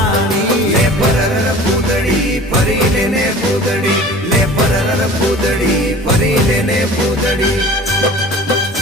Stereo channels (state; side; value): normal; both; correlation 0.42